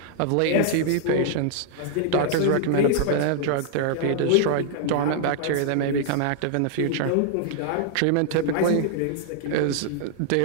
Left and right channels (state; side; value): different; both; correlation -0.01